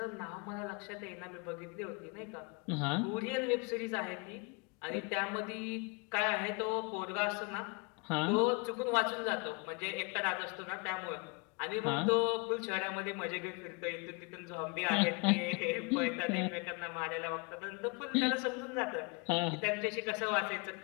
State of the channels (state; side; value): quieter; right; 31.1 dB